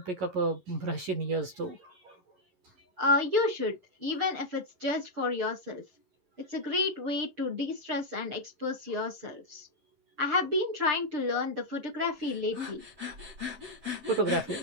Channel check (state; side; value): late; left; 11 ms